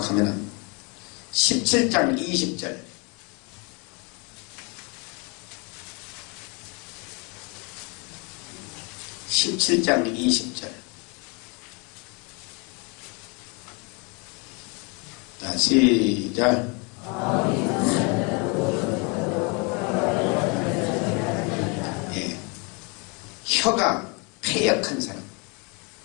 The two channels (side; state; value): right; quieter; 31.8 dB